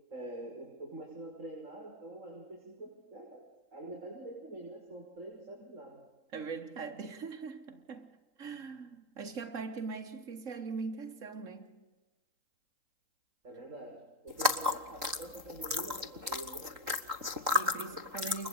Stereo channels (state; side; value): late; left; 3.8 ms